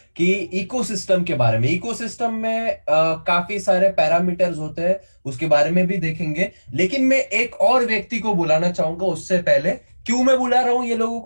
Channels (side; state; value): both; inverted; correlation -1.00